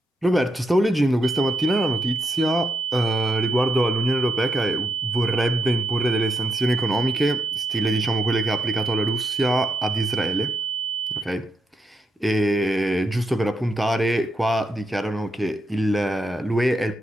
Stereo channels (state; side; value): normal; both; correlation 0.79